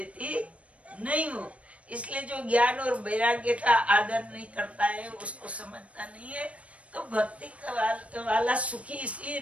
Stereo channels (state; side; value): late; left; 0.064 ms